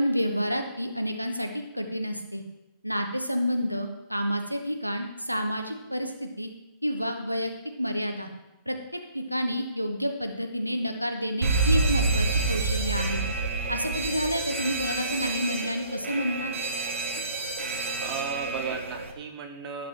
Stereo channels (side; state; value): both; inverted; correlation -0.67